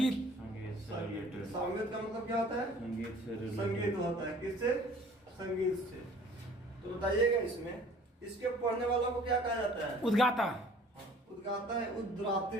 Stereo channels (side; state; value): both; normal; correlation 0.51